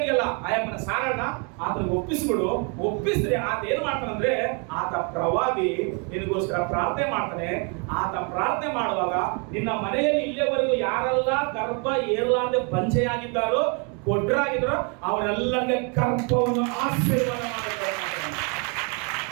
ಆಯಮ್ಮನ ಸಾರಣ್ಣ ಆತನ ಒಪ್ಪಿಸ್ಬಿಡು. ಒಪ್ಪಿಸಿದ್ರೆ ಆತ ಏನ್ ಮಾಡ್ತಾನಂದ್ರೆ, ಆತ ಪ್ರವಾದಿ ನಿನಗೋಸ್ಕರ ಪ್ರಾರ್ಥನೆ ಮಾಡ್ತಾನೆ. ಆತ ಪ್ರಾರ್ಥನೆ ಮಾಡುವಾಗ ನಿನ್ನ ಮನೆಯಲ್ಲಿ ಇಲ್ಲಿಯವರೆಗೂ ಯಾರೆಲ್ಲ ಗರ್ಭ ಏರ್ಲಾರ್ದೆ ಬಂಜೆಯಾಗಿದ್ದಾರೋ, ಕೊಡ್ರಾಗಿದ್ದಾರೋ ಅವರೆಲ್ಲರಿಗೆ ಗರ್ಭವನ್ನು ಆಶೀರ್ವಾದ ಮಾಡಿದ್ದಾರೆ.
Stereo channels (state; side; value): quieter; left; 35.8 dB